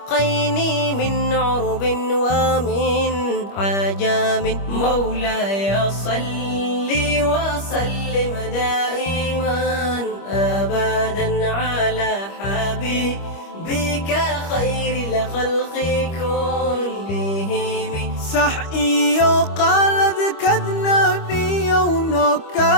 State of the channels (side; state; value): right; late; 25 ms